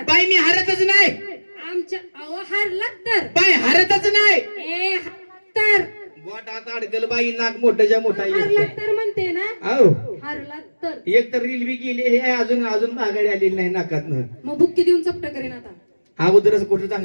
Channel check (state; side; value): inverted; both; correlation -1.00